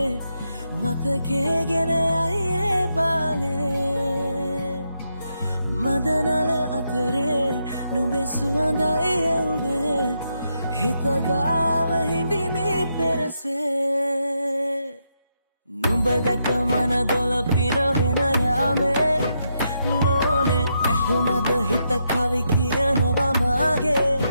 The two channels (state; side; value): inverted; both; correlation -0.81